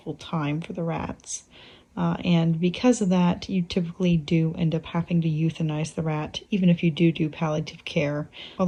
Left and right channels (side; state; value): both; identical; correlation 1.00